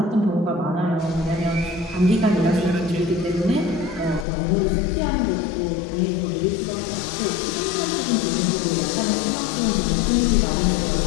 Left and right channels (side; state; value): right; drops out; at 4.2 s